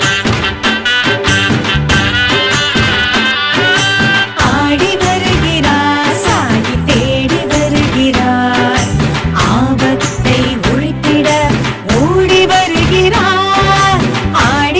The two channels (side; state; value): both; identical; correlation 1.00